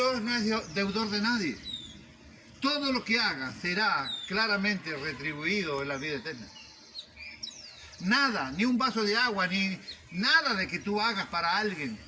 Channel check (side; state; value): both; identical; correlation 1.00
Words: no es deudor de nadie. Todo lo que hagas será claramente retribuido en la vida eterna. Nada, ni un vaso de agua, ni nada de que tú hagas para alguien